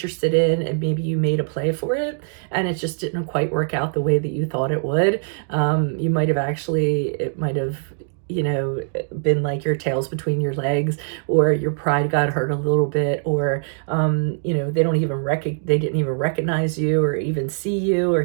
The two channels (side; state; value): left; silent; digital silence